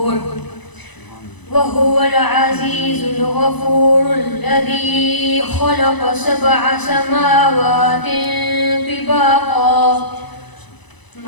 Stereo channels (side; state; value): right; late; 1.0 ms